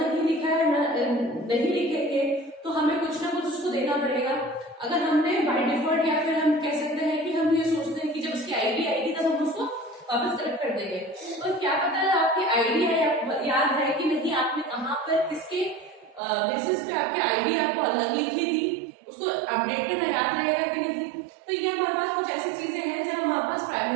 नहीं लिखा है, नहीं लिखेंगे तो हमें कुछ ना कुछ उसको देना पड़ेगा। अगर हमने बाय डिफॉल्ट, या फिर हम कह सकते हैं कि हम ये सोचते हैं कि जब उसकी आईडी आएगी तब हम उसको वापस कलेक्ट कर देंगे, तो क्या पता है आपकी आईडी है, याद है कि नहीं, आपने कहाँ पर किसके बेसिस पे आपकी आईडी आपको अलग लिखी थी, उसको अपडेट करना याद रहेगा कि नहीं। तो ये हमारे पास कुछ ऐसी चीजें हैं जब हम हमारे पास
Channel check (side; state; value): left; drops out; at 16.2 s